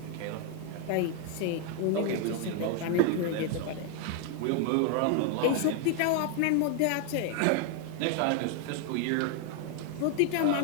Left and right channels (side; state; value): both; different; correlation 0.01